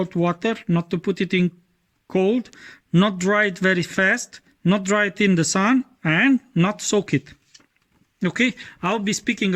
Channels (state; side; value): identical; both; correlation 1.00